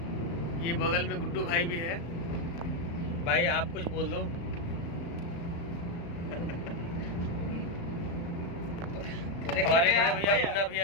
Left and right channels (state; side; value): late; right; 35 ms